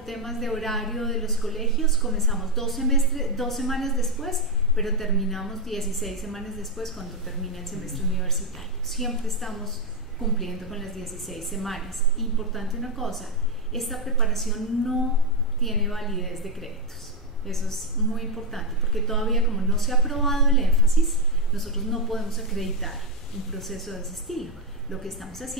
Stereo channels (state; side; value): normal; both; correlation 0.04